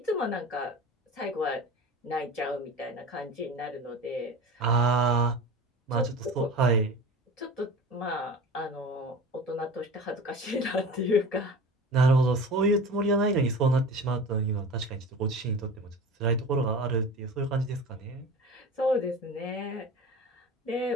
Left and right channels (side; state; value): both; normal; correlation 0.34